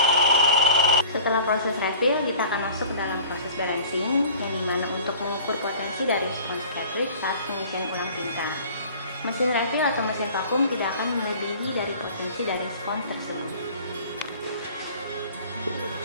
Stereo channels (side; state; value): both; inverted; correlation -0.46